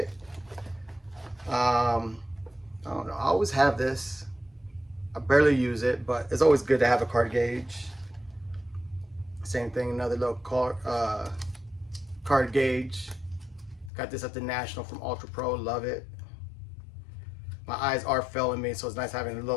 I don't know, I always have this. I barely use it, but it's always good to have a card gauge. Same thing, another little card gauge. Got this at the National from Ultra Pro, love it. My eyes are failing me, so it's nice having a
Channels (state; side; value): drops out; right; at 13.9 s